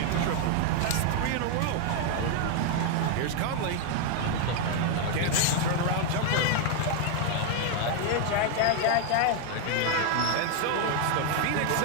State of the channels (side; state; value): both; different; correlation 0.00